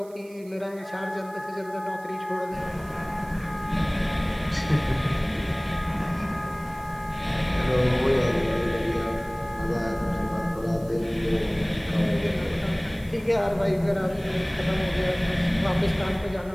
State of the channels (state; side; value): noise; right; hiss, 25 dB below the sound